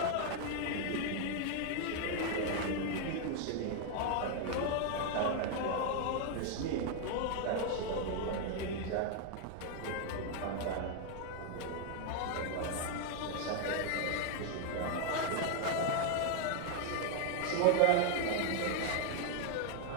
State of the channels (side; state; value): both; different; correlation 0.00